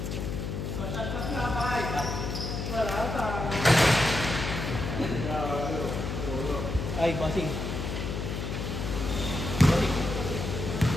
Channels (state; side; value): noise; left; hum, 4 dB below the sound